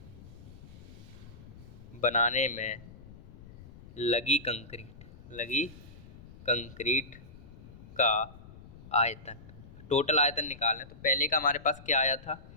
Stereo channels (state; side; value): noise; left; rumble, 17 dB below the sound